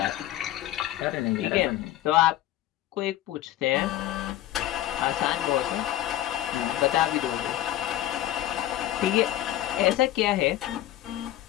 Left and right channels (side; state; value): right; quieter; 13.7 dB